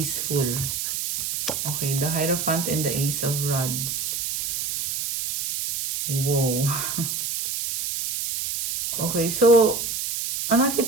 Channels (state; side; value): noise; right; hiss, 3 dB below the sound